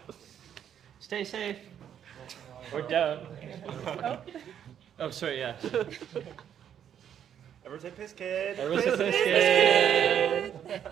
Stay safe. We're down. Oh, sorry, yeah. Everyone say piss kid. Everyone say piss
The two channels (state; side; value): quieter; left; 9.3 dB